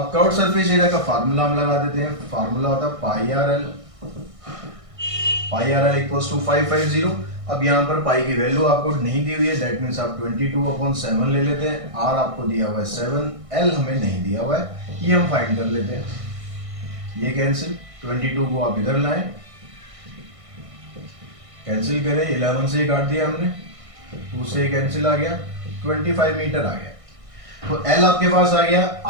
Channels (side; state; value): left; late; 1.6 ms